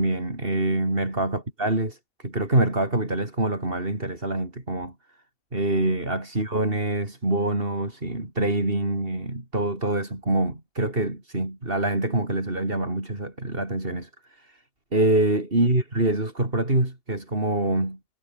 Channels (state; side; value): late; left; 2.7 ms